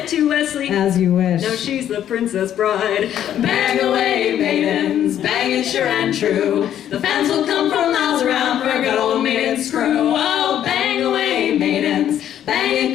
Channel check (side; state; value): right; quieter; 10.6 dB